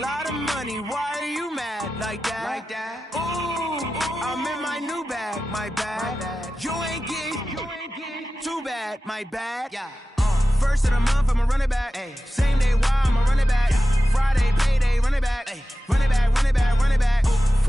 of money, why are you mad like that? Ooh, I'm in my new bag, my bad. You ain't get too bad, my bad. Yeah. First of the month, I'ma run it back. Ay. Same day, why I'ma run it back. Friday, payday, run it back. Ay. Run it back, run it back, run it back.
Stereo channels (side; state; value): both; normal; correlation 0.94